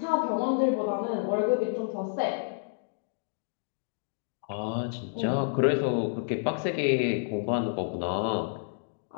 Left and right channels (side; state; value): right; silent; digital silence